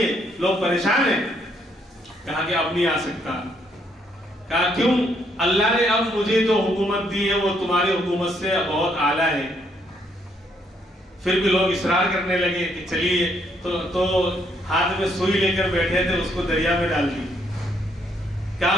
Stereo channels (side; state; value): both; normal; correlation 0.71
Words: لوگ پریشان ہیں. کہا کہ اب نہیں آ سکتا. کہا کیوں؟ اللہ نے اب مجھے جو حکومت دی ہے وہ تمہاری حکومت سے بہت اعلیٰ ہے. پھر بھی لوگ اصرار کرنے لگے کہ چلیے, تو ہاتھ میں سوئی لے کر بیٹھے تھے, اس کو دریا میں ڈال دی.